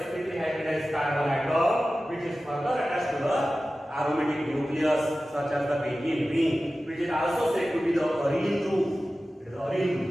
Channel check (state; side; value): normal; both; correlation 0.95